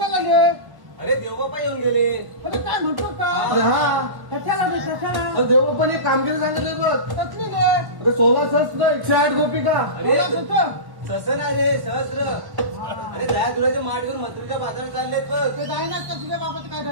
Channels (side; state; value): left; late; 1.1 ms